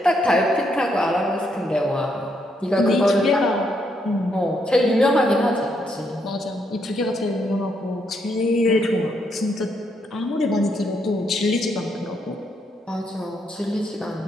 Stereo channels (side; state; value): both; normal; correlation 0.76